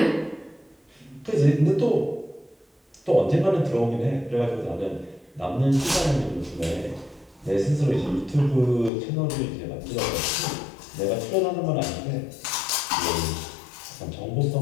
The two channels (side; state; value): right; drops out; at 8.9 s